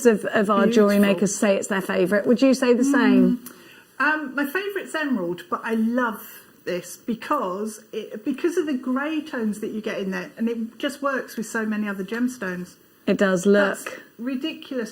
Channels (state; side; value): identical; both; correlation 1.00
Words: of our jewellery makers say it's their favourite. Would you say the same? My favourite's emerald, but I love this because of the grey tones that you get in there, and it just works with so many other gemstones. It does. Look. That's ridiculous